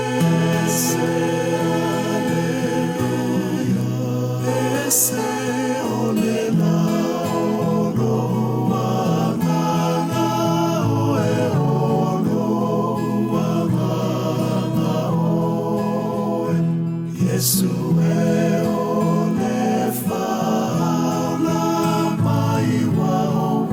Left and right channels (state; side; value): identical; both; correlation 1.00